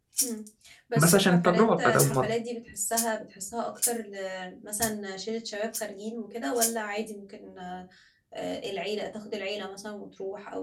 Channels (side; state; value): both; identical; correlation 1.00